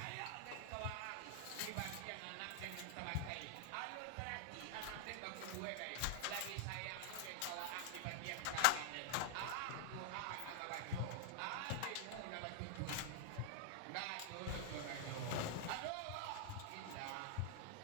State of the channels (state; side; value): different; both; correlation 0.00